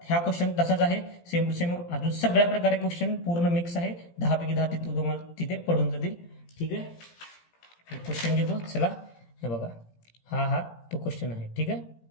ह्या क्वेश्चन तसाच आहे, सेम टू सेम. अजून सगळ्या प्रकारे क्वेश्चन पूर्ण मिक्स आहे. 10 पैकी 10 तुम्हाला तिथे पडून जातील. ठीक आहे. क्वेश्चन घेतो. चला हे बघा, हा तो क्वेश्चन आहे. ठीक आहे,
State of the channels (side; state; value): right; late; 17 ms